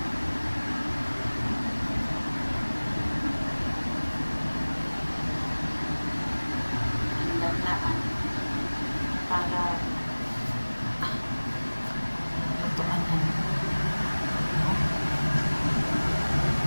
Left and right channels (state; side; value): inverted; both; correlation -1.00